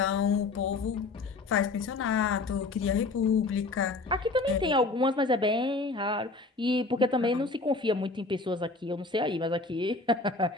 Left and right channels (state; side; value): quieter; right; 3.6 dB